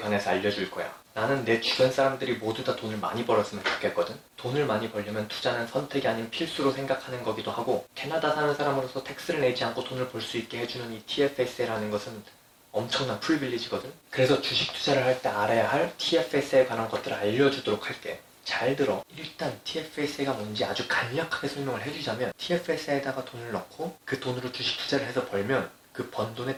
알려줄 거야. 나는 내 주변 사람들이 모두 다 돈을 많이 벌었으면 좋겠거든. 돈을 많이 벌려면 투자는 선택이 아닌 필수로 생각하는 거기도 하고, 캐나다 사는 사람으로서 텍스를 내지 않고 돈을 벌 수 있게 해주는 이 TFSA라는 것은 엄청난 프리빌리지거든. 그래서 주식 투자를 할 때 알아야 할 TFSA에 관한 것들을 알려주도록 할게. 잘 들어. 일단 TFSA가 뭔지 아주 간략하게 설명을 해주자면, TFSA에다가 돈을 넣고 그 돈으로 주식 투자를 해서 벌면 그 번 돈에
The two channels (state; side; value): identical; both; correlation 1.00